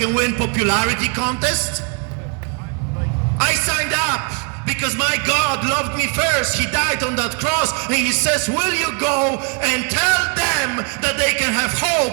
win popularity contest. I signed up because my God loved me first. He died on that cross and he says, will you go and tell them that they can have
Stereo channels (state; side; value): quieter; left; 37.5 dB